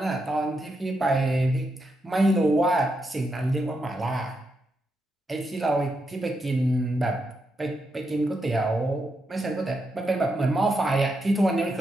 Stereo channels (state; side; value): normal; both; correlation 0.83